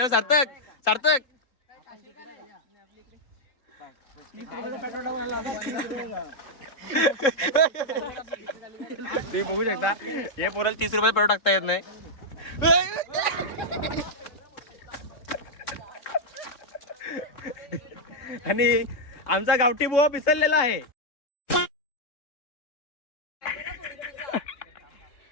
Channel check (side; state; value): right; late; 3.6 ms